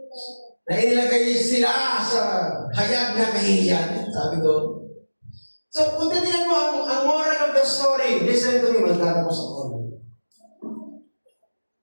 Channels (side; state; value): both; inverted; correlation -1.00